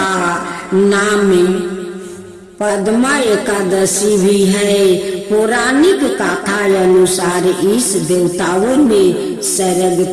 नाम पद्मा एकादशी भी है। पौराणिक कथा अनुसार इस देवताओं ने स्वर्ग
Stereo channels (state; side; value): identical; both; correlation 1.00